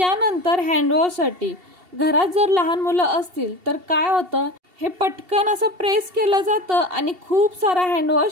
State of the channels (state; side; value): late; left; 2.7 ms